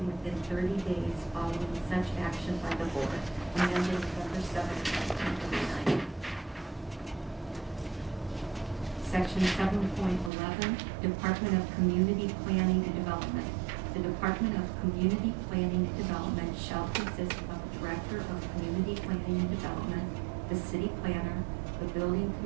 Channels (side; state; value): left; drops out; at 10.3 s